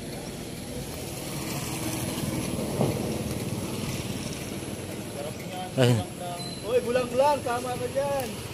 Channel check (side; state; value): both; identical; correlation 1.00